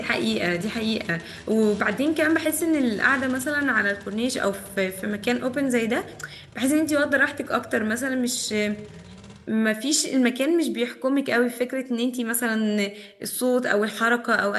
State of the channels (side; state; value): both; identical; correlation 1.00